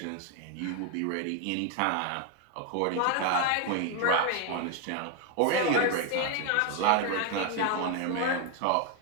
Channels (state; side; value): different; both; correlation 0.01